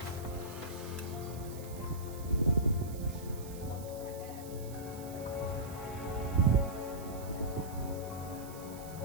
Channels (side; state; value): right; noise; hiss, 16 dB below the sound